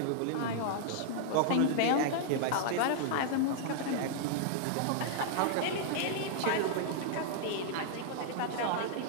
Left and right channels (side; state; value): both; different; correlation -0.01